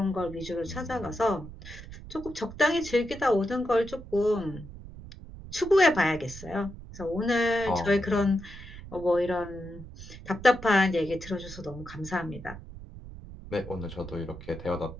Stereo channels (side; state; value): right; noise; rumble, 14 dB below the sound